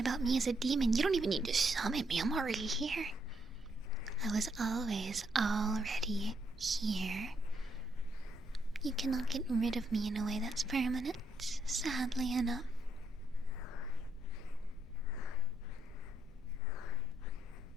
about me as a demon. You don't even need to summon me. I'm already here. I was always already here. You cannot get rid of me in a way that's permanent, sadly enough.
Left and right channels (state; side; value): noise; left; rumble, 20 dB below the sound